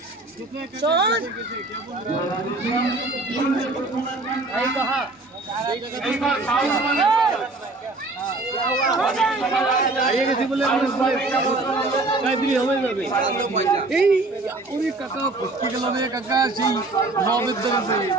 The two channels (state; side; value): quieter; left; 3.1 dB